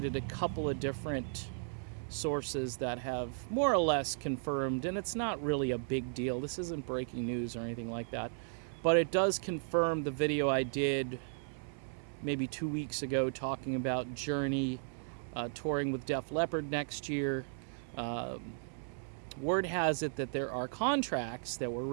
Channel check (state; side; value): silent; left; 54 dB below the other